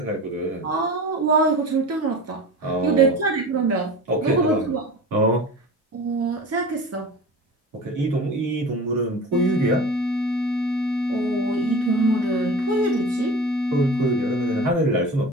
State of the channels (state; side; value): normal; both; correlation 0.35